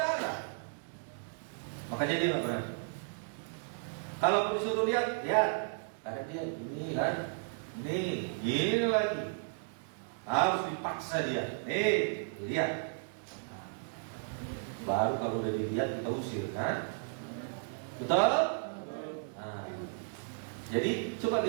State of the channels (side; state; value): left; silent; digital silence